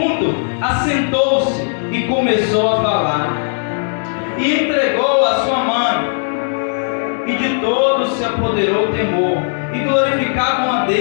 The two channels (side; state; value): right; silent; 61 dB below the other